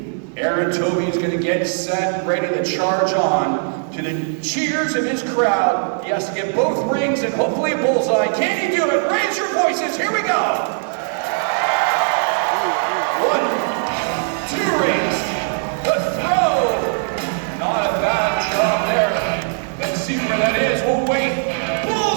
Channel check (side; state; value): left; silent; 62 dB below the other